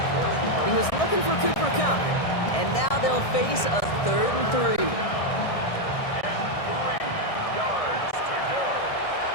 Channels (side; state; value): right; late; 1.6 ms